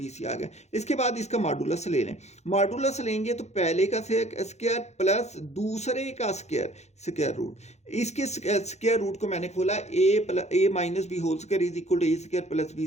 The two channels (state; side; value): late; right; 0.32 ms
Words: c आ गया। इसके बाद इसका मॉडुलस ले लें, मॉडुलस लेंगे तो पहले का स्क्वायर प्लस दूसरे का स्क्वायर रूट। इसके स्क्वायर रूट को मैंने खोला, a minus b whole square is equal to a square plus b